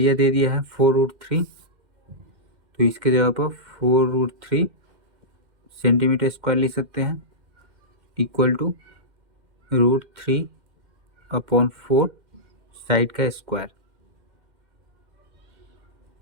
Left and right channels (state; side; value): late; left; 2.1 ms